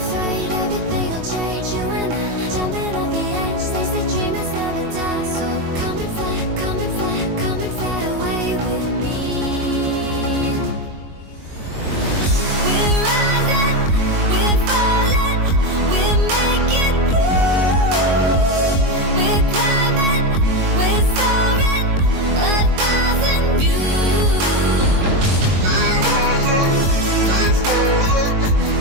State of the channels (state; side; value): late; left; 22 ms